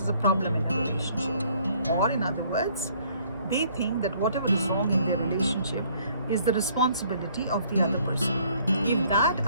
as a problem in a relationship. Or in other words, they think that whatever is wrong in their relationship is the responsibility of the other person. If that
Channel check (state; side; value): inverted; both; correlation -0.62